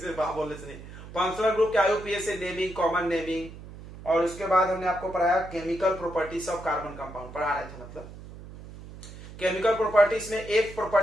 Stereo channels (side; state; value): right; noise; hum, 15 dB below the sound